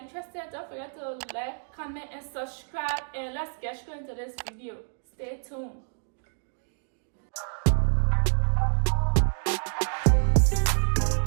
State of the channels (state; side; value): silent; left; digital silence